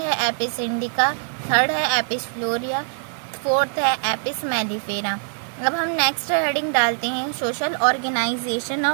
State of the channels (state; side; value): silent; left; digital silence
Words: है एपिस इंडिका, थर्ड है एपिस फ्लोरिया, फोर्थ है एपिस मेलिफेरा। अब हम नेक्स्ट हेडिंग डालते हैं social organisation